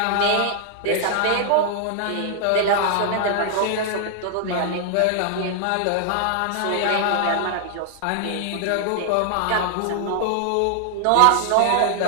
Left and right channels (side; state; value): both; different; correlation 0.00